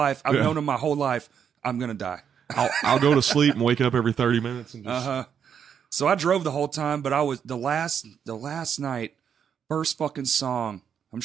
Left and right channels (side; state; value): left; quieter; 7.8 dB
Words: I've known them my whole life. I'm gonna die. I'll go to sleep and wake up every 30 minutes and just So I drove the whole time, but I was the last night, first fucking song. I'm